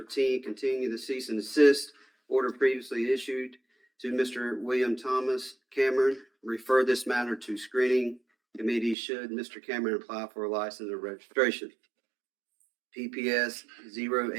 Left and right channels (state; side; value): drops out; left; at 9.0 s